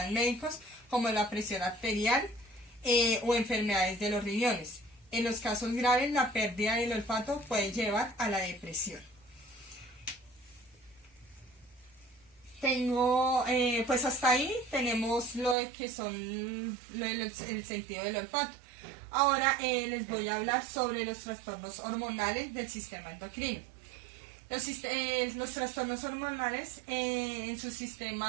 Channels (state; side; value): drops out; left; at 15.6 s